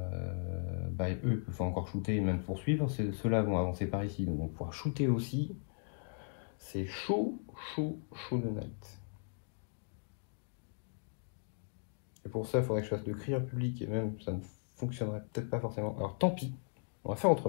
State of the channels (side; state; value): right; silent; 53 dB below the other